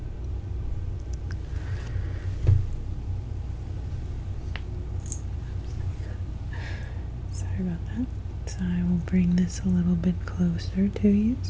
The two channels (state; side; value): identical; both; correlation 1.00